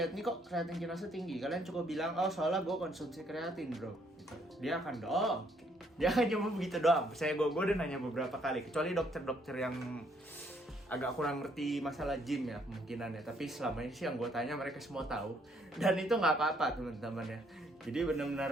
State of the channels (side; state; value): both; normal; correlation 0.68